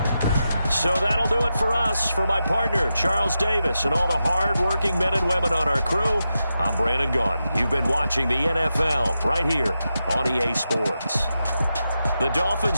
So that'll do it for us. For my partner, Charles Davis, and all the hard-working men and women on our crew, I'm Brandon Gaudin. You've been watching the NFL right here on EA Sports. The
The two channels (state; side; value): inverted; both; correlation -0.89